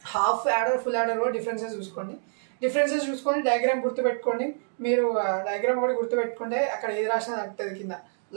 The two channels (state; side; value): silent; left; digital silence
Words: half adder full adder కూడా డిఫరెన్సెస్ చూసుకొని డయాగ్రామ్ గుర్తుపెట్టుకోండి. మీరు డయాగ్రామ్ కూడా గుర్తుపెట్టుకుంటే అక్కడ ఏది రాసినా తగ్గుతుంది కింద,